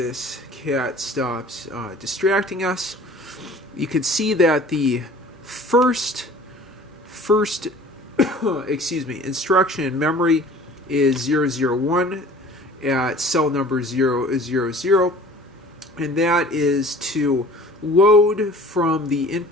cat stops distracting us, you can see that the first instruction in memory is 001 at cell number 000. And that is to load from the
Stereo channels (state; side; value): normal; both; correlation 0.47